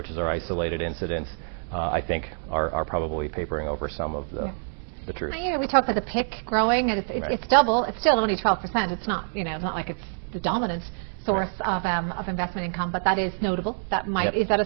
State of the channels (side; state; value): left; silent; digital silence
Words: are isolated incidents, I think are probably papering over some of the truth. We talk about the PIC growing, and it's double. It's still only 12%. It's not it's not like it's the dominant source of investment income, but that is notable. That might is that